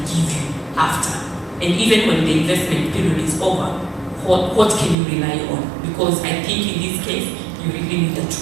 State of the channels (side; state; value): left; drops out; at 5.0 s